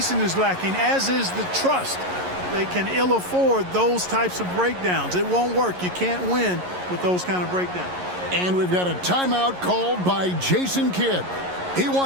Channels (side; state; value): left; late; 11 ms